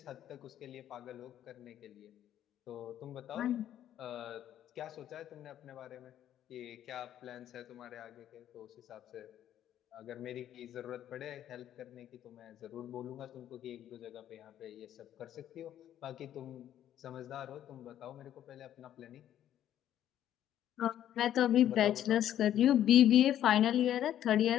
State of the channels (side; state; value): right; quieter; 11.2 dB